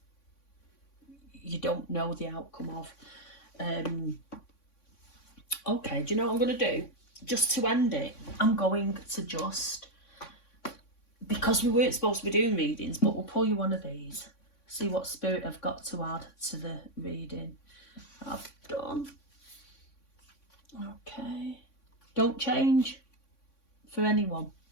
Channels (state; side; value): late; right; 3.6 ms